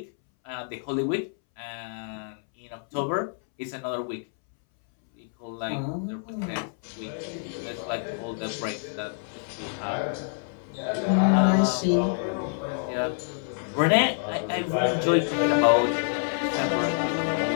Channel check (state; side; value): silent; right; 60 dB below the other